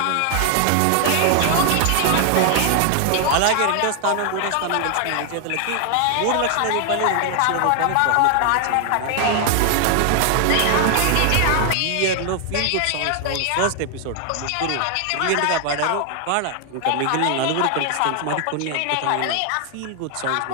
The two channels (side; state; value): both; different; correlation 0.00